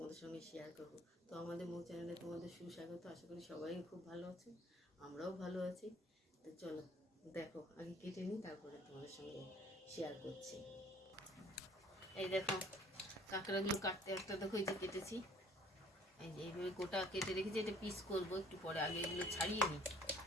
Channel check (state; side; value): normal; both; correlation 0.56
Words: সঙ্গে শেয়ার করব। তো আমাদের মৌ চ্যানেলে তোমাদের সুস্বাগত। আশা করি সবাই খুব ভালো আছে, আমরাও ভালো আছি। তো চলো দেখো, আগে কেটে নিই, তারপরে তোমাদের সঙ্গে শেয়ার করছি। এই দেখো কাঁকড়াগুলো কাটতে একটা দেখো, এই যে কেটেছি, এই যে এইভাবে গোটা কেটে রেখেছি। এটা পিস করবো একটু পরে, আগে এগুলো ছাড়িয়ে নিই।